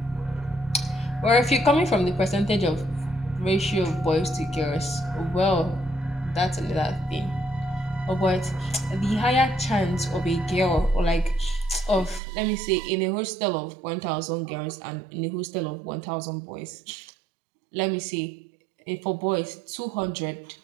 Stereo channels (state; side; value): drops out; left; at 12.2 s